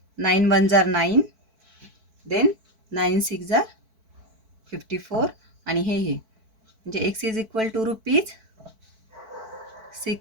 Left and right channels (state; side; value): late; left; 4.5 ms